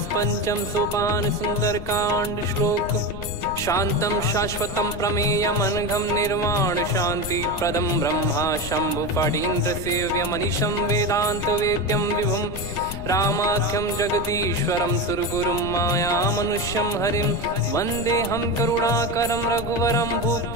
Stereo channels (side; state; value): left; noise; rumble, 8 dB below the sound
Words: पंचम सोपान सुंदरकांड श्लोक। शांतं शाश्वतं प्रमेयमनघं निर्वाण शांति प्रदं ब्रह्मा शंभु फणीन्द्र सेव्यमनिशं वेदांत वेद्यं विभुं। रामाख्यं जगदीश्वरं सुरगुरुं मायामनुष्यं हरिं। वन्देऽहं करुणाकरं रघुवरं